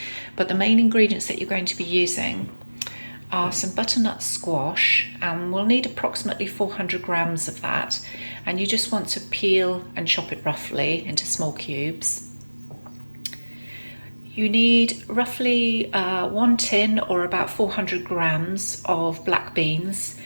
but the main ingredients that you're going to be using are some butternut squash, and we'll need approximately 400 grams of that, and you just want to peel and chop it roughly into small cubes. You need roughly 1 tin or about 400 grams of black beans,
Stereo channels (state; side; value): inverted; both; correlation -1.00